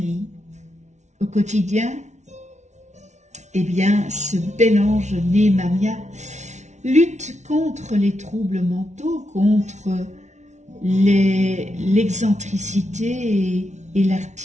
Au quotidien, ce bel ange Némamia lutte contre les troubles mentaux, contre l'excentricité et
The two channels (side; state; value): left; late; 0.33 ms